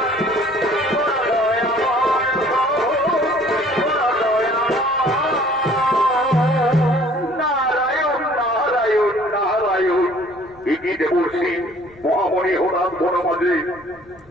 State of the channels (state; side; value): noise; left; rumble, 27 dB below the sound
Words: দেবর্ষী মহামণি হঠাৎ বনমাঝে।